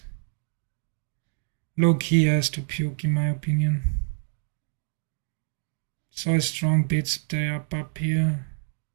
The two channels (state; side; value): silent; left; 57 dB below the other